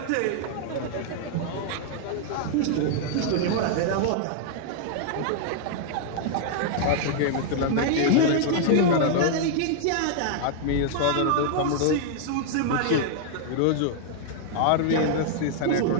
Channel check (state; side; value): different; both; correlation 0.00